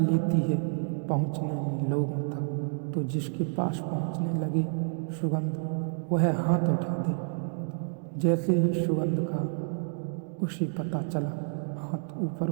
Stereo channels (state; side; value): silent; left; digital silence